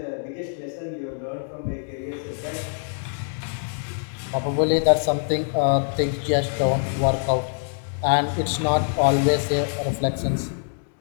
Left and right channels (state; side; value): silent; right; digital silence